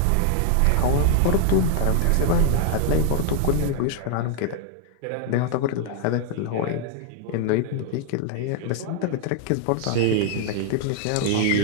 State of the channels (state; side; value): different; both; correlation 0.00